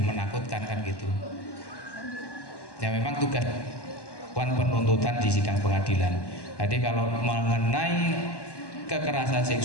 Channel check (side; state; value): right; late; 1.1 ms